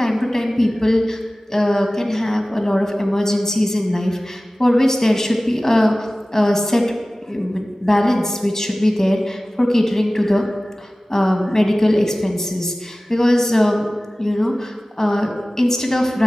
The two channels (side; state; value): both; normal; correlation 0.97